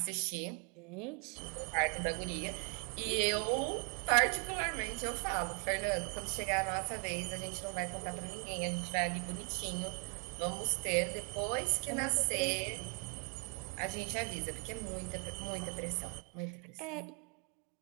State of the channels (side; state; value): left; quieter; 37.4 dB